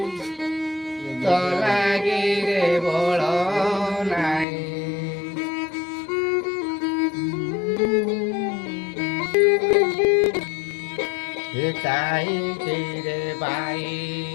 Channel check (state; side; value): drops out; right; at 4.5 s